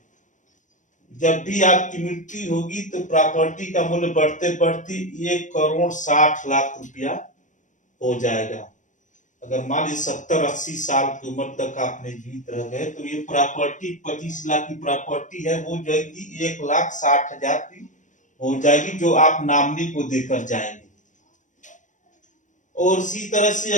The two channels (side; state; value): right; late; 0.36 ms